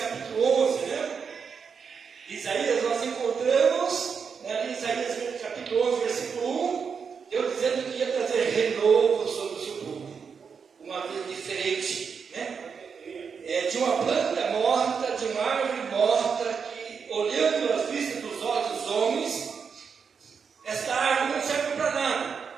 11, né? Isaías, nós encontramos, né, em Isaías capítulo 11, versículo 1, Deus dizendo que ia trazer renovo sobre o seu povo, uma vida diferente, né? De uma planta morta, de uma árvore morta, que olhando as vistas dos olhos dos homens, esta árvore não serve para nada,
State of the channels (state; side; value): quieter; left; 6.1 dB